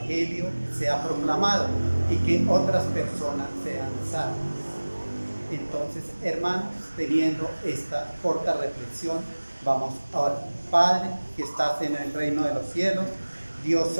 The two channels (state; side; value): inverted; both; correlation -1.00